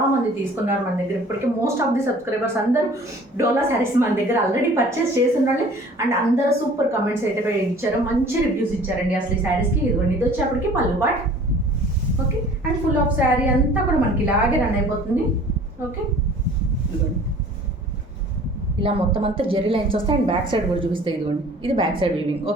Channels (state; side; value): normal; both; correlation 0.49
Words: మంది తీసుకున్నారు మన దగ్గర. ఇప్పటికీ మోస్ట్ ఆఫ్ ది సబ్స్క్రైబర్స్ అందరూ డోలా శారీస్ మన దగ్గర ఆల్రెడీ పర్చేస్ చేస్తున్నారు. అండ్ అందరూ సూపర్ కమెంట్స్ అయితే ఇచ్చారు, మంచి రివ్యూస్ ఇచ్చారండి అసలు ఈ శారీస్కి. ఇది వచ్చేప్పటికి పళ్ళు పాట్. Okay, and full of sari అంతా కూడా మనకి ఇలాగే రన్ అయిపోతుంది. ఓకే, ఇలా మొత్తం అంతా జెరీ లైన్స్ వస్తాయి. అండ్ బ్యాక్ సైడ్ కూడా చూపిస్తాయి. ఇదిగోండి, ఇది బ్యాక్ సైడ్ వీవింగ్.